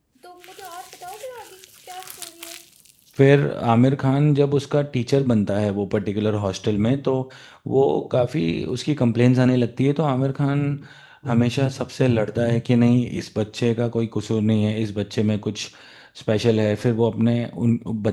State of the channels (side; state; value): both; identical; correlation 1.00